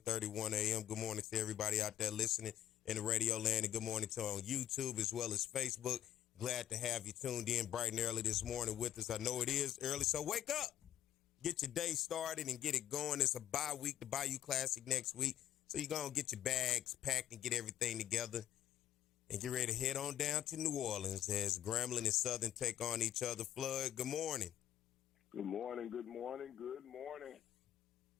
a.m. Good morning to everybody out there listening in the radio land, and good morning to on YouTube as well as Facebook. Glad to have you tuned in bright and early this morning with us. I know it is early, so wake up. Get your day started and get it going. It's a bye week, the Bayou Classic next week. So you're going to get your bags packed and get everything together and get ready to head on down to New Orleans as Grambling and Southern take on each other. Flood, good morning. Good morning, good morning, good morning.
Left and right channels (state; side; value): quieter; right; 12.1 dB